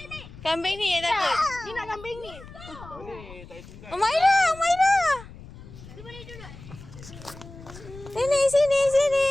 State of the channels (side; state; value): left; noise; rumble, 17 dB below the sound